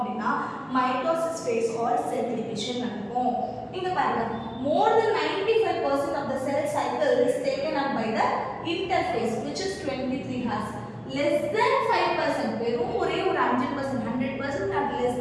mitosis phase or cell division நடக்கும். இங்க பாருங்க, more than 95% of the cell cycle is taken up by the interphase which is 23 hours. less than 5%, வெறும் ஒரே ஒரு 5%, 100% at less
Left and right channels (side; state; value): both; identical; correlation 1.00